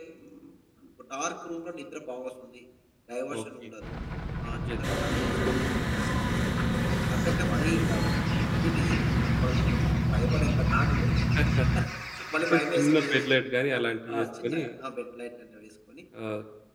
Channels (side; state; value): both; identical; correlation 1.00